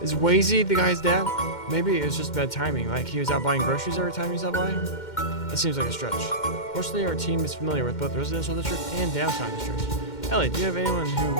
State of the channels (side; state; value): right; late; 2.1 ms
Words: Is Wazy the guy's dad? Maybe it was just bad timing, like he was out buying groceries every time he stopped by? That seems like a stretch. Fortunately, our team is familiar with both the residential district and downtown district. Ellie, do you have anyone